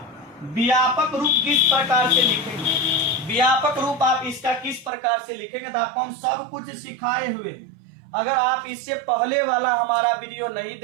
व्यापक रूप किस प्रकार से लिखेंगे, व्यापक रूप आप इसका किस प्रकार से लिखेंगे, तो आपको हम सब कुछ सिखाए हुए हैं। अगर आप इससे पहले वाला हमारा वीडियो नहीं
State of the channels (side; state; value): left; drops out; at 4.9 s